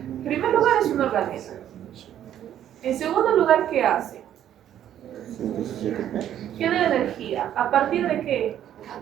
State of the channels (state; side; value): quieter; left; 10.9 dB